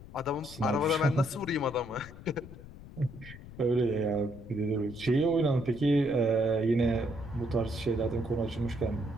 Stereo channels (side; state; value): left; noise; rumble, 16 dB below the sound